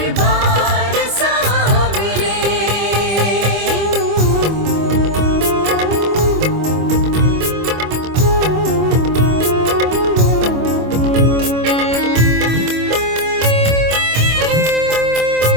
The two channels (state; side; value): late; left; 25 ms